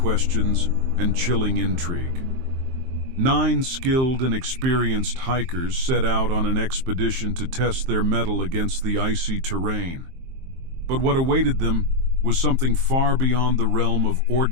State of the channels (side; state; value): left; late; 23 ms